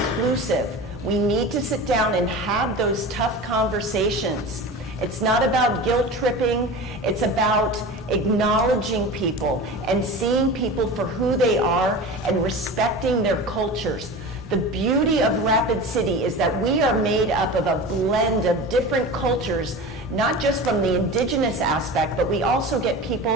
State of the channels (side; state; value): both; normal; correlation 0.32